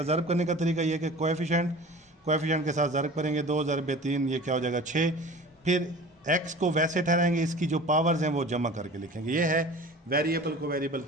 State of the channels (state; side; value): normal; both; correlation 0.40